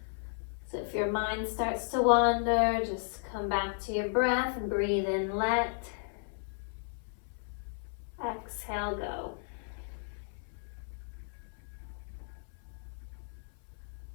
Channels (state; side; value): silent; right; 55 dB below the other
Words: So if your mind starts to wander, just come back to your breath and breathe in, let. Exhale, go.